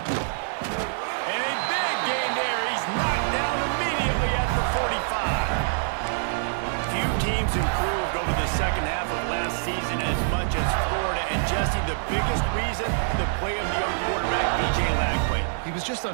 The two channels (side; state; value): left; silent; digital silence